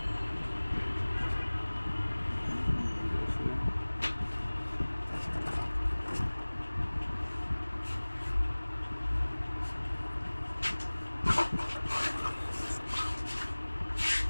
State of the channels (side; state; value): both; inverted; correlation -1.00